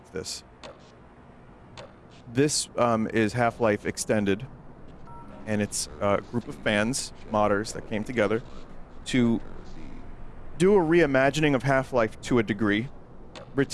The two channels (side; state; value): both; identical; correlation 1.00